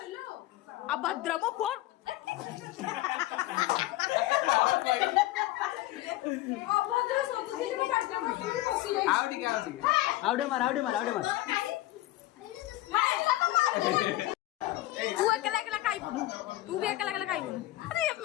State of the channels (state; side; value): quieter; right; 16.7 dB